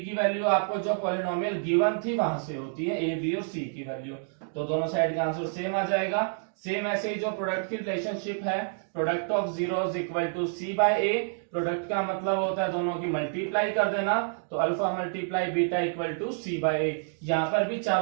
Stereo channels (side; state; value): left; silent; digital silence